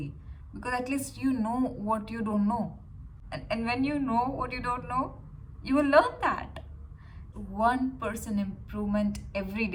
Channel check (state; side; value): identical; both; correlation 1.00